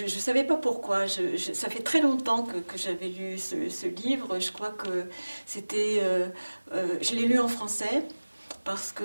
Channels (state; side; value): inverted; both; correlation -1.00